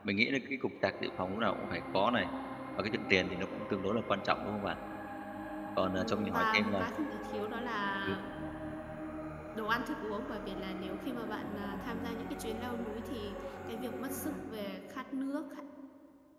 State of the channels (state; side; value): identical; both; correlation 1.00